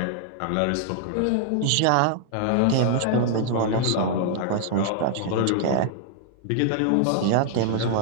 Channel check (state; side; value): different; both; correlation -0.01